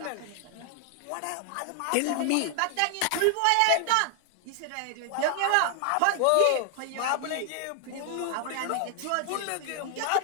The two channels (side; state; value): both; different; correlation 0.00